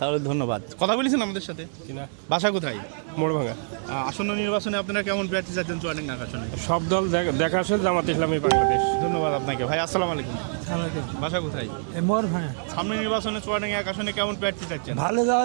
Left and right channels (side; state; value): left; silent; digital silence